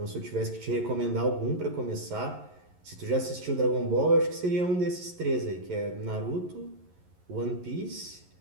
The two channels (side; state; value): left; late; 11 ms